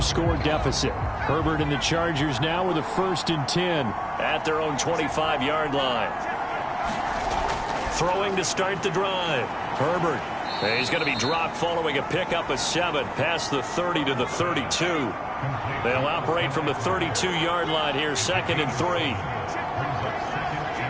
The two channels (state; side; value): identical; both; correlation 1.00